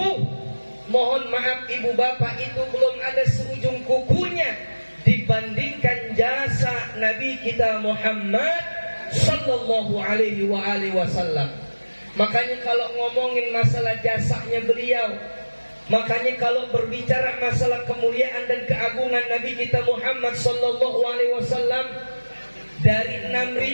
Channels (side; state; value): both; inverted; correlation -1.00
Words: mohon maaf ibu bapak, itu belum ada seujung kukunya dibandingkan jasa Nabi kita Muhammad sallallahu alaihi wasallam. Makanya kalau ngomongin masalah jasanya beliau, makanya kalau berbicara masalah kemuliaan dan keagungan Nabi kita Muhammad sallallahu alaihi wasallam, dari